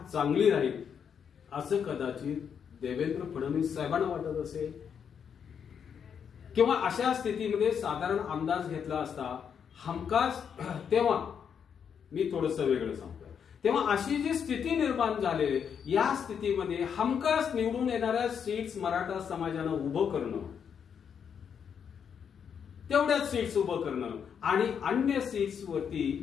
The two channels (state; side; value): quieter; right; 7.4 dB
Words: चांगली राहील असं कदाचित देवेंद्र फडणवीस साहेबांना वाटत असेल. किंवा अशा स्थितीमध्ये साधारण अंदाज घेतला असता हमखास, तेव्हा मी थोडंसं वेगळं सांगतोय, तेव्हा अशी जी स्थिती निर्माण झाली या स्थितीमध्ये हमखास निवडून येणाऱ्या सीट्स मराठा समाजानं उभं करणं, तेवढ्याच सीट्स उभं करणं आणि अन्य सीट्स वरती